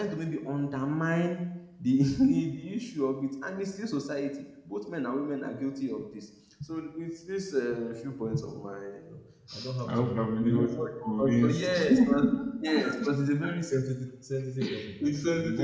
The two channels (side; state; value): both; identical; correlation 1.00